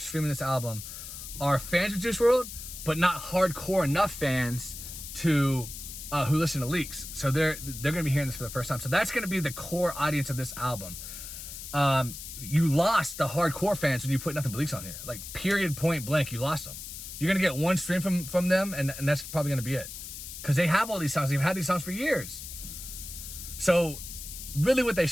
this album, are fans of Juice WRLD, but not hardcore enough fans to who listen to leaks. So they're going to be hearing this for the first time. So that's going to be the core audience of this album. You lost the hardcore fans when you put nothing but leaks on here. Like, period, point blank, you lost them. You're going to get one stream from them, and that's probably going to be it. Because they have all these songs. They've had these songs for years. So really what they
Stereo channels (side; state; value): left; noise; hiss, 10 dB below the sound